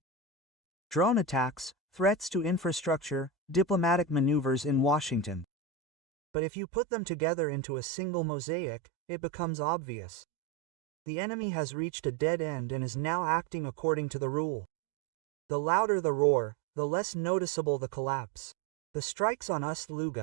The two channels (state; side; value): drops out; left; at 5.5 s